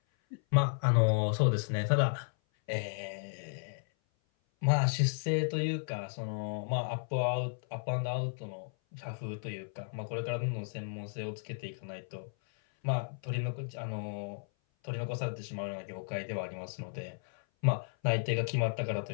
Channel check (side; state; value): right; silent; 55 dB below the other